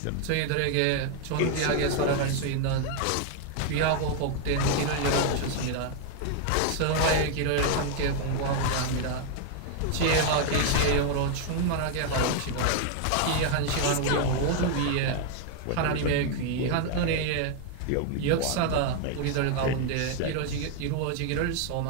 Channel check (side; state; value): both; different; correlation 0.00